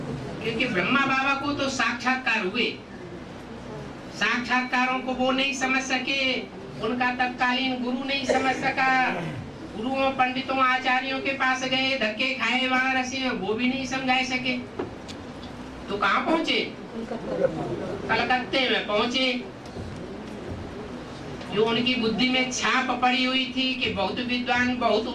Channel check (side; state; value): both; identical; correlation 1.00